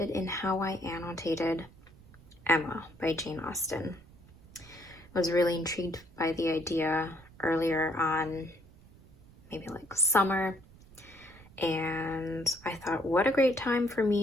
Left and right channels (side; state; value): right; noise; rumble, 23 dB below the sound